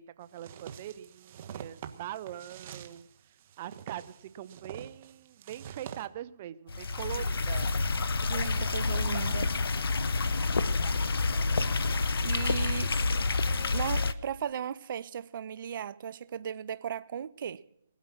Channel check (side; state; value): both; inverted; correlation -0.79